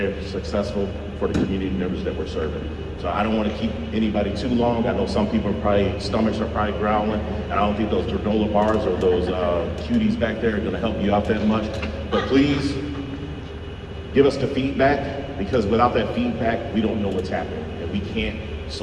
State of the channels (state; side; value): identical; both; correlation 1.00